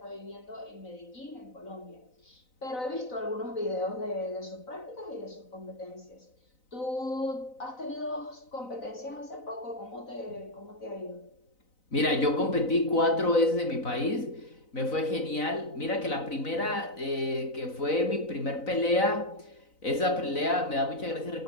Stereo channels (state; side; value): late; right; 4.0 ms